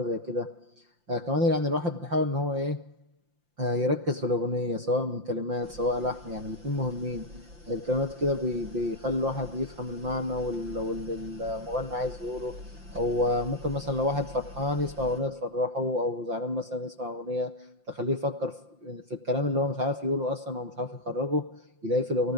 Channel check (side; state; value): left; late; 5.8 ms